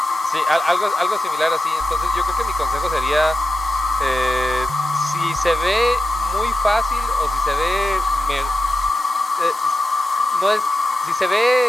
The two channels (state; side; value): normal; both; correlation 0.91